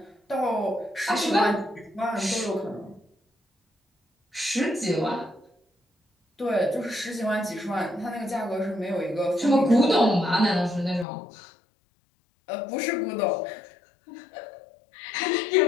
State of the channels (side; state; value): right; drops out; at 11.1 s